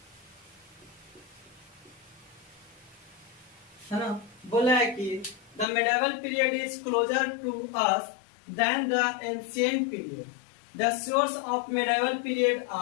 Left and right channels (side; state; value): right; drops out; at 5.7 s